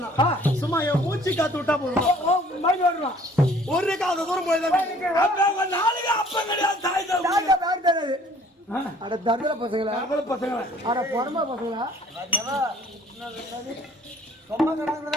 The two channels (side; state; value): both; normal; correlation 0.56